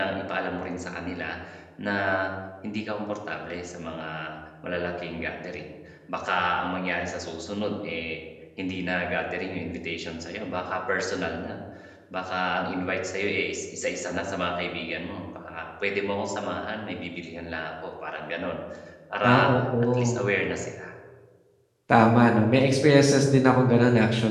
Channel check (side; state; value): both; identical; correlation 1.00